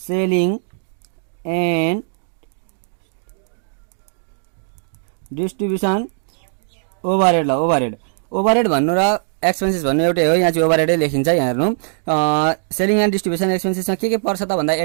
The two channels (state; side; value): silent; left; digital silence